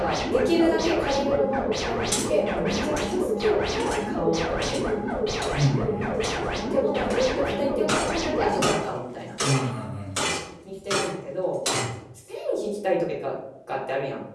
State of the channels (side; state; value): both; identical; correlation 1.00